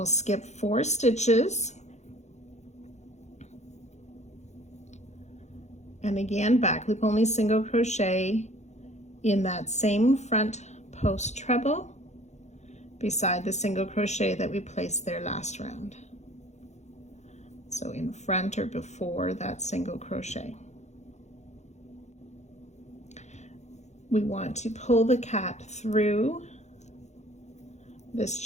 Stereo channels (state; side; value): late; right; 0.33 ms